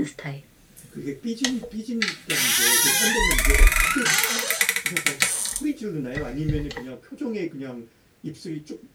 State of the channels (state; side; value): identical; both; correlation 1.00